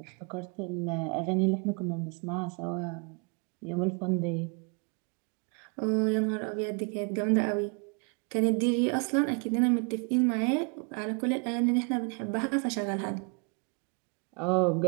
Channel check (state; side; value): quieter; left; 35.3 dB